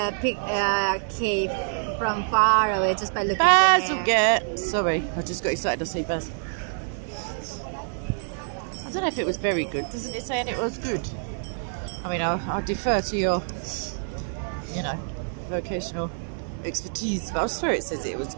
pick a cave from far away just by looking Baz at will the hair. get. Sorry, I just got excited to see Baz. I don't know if it was very good. Doesn't it say it was good? I mean, I'll defer to your, vocational expertise, but I swear it says it was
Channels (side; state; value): left; silent; digital silence